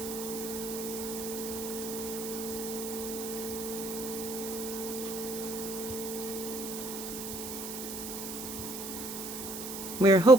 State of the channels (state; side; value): noise; right; hiss, 8 dB below the sound